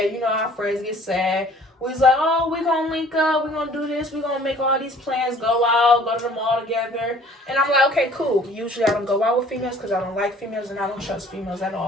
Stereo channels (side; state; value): both; normal; correlation 0.53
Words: Our friends get sad. We was like, oh, we're going to link up. We're going to do this. We're going to make all these plans, go out, go to the mall together. And I'm like, okay, cool. Usually I don't go out with females because I don't like females and I don't trust females at